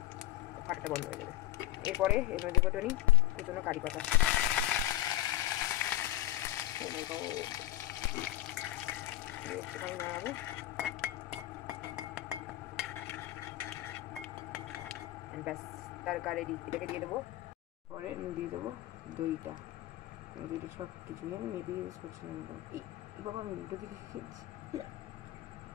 ফাটাটা বন্ধ হয়ে যাবে। এরপরে এর মধ্যে দেবো টনি কুচনো কারি পাতা, একটুখানি নাড়াবো, ব্যাস তারকা রেডি। এটাকে দিয়ে দেবো, পরে দিয়ে দেবো দইটা। দইটা সব কিছু আমি মেপে ইউজ করছি না, এই বাবা আমি উল্টো দিকে খেয়েছি।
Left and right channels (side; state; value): right; quieter; 14.9 dB